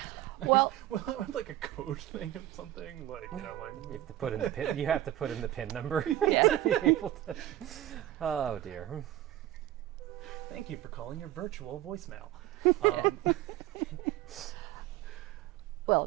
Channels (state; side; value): quieter; left; 13.9 dB